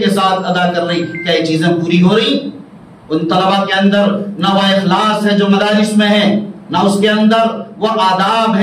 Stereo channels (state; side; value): identical; both; correlation 1.00